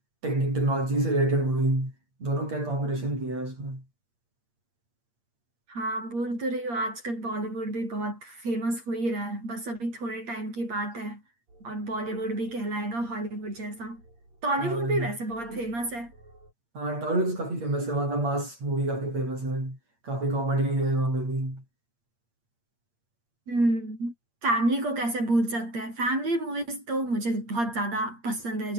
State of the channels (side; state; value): left; late; 8.6 ms